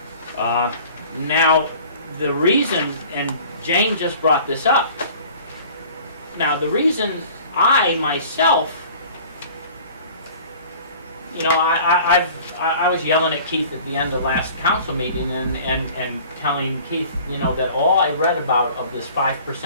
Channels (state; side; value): inverted; both; correlation -0.47